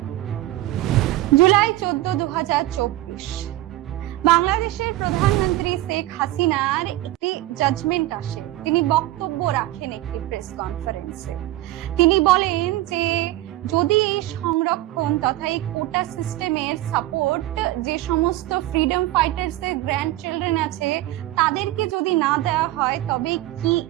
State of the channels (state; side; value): quieter; left; 16.1 dB